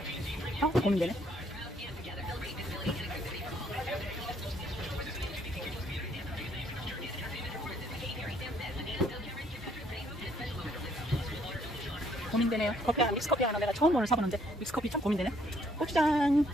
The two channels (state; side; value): normal; both; correlation 0.66